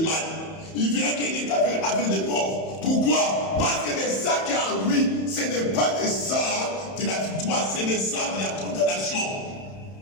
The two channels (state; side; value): late; right; 31 ms